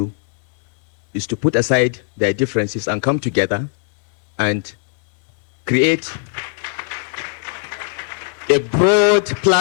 is to put aside their differences and come together and create a broad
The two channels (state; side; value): silent; right; digital silence